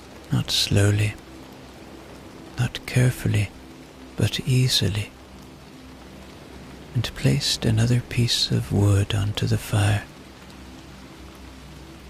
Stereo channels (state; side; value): identical; both; correlation 1.00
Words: Not slowly, not carefully, but easily, and placed another piece of wood onto the fire.